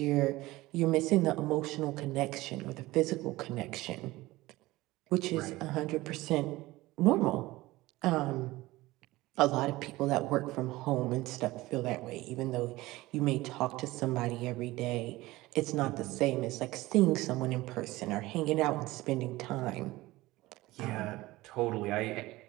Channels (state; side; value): quieter; left; 18.9 dB